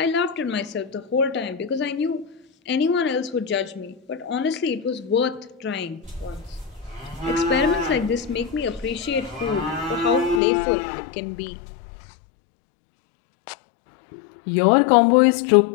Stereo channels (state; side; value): drops out; right; at 10.4 s